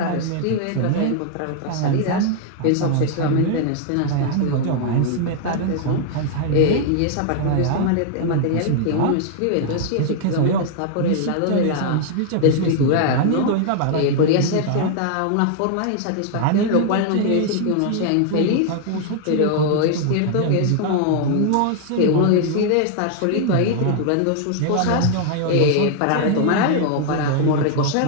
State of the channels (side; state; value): both; different; correlation 0.00